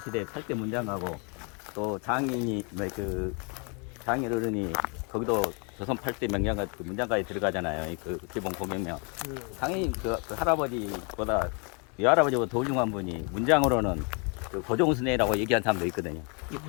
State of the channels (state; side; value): quieter; right; 34.9 dB